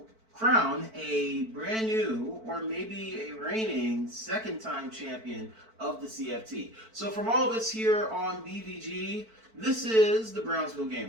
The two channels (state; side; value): late; left; 4.5 ms